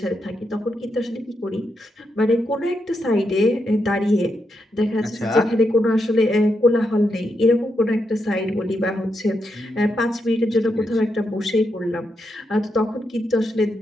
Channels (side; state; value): both; normal; correlation 0.83